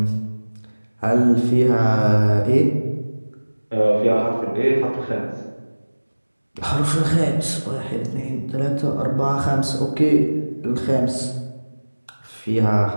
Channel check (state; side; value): inverted; both; correlation -1.00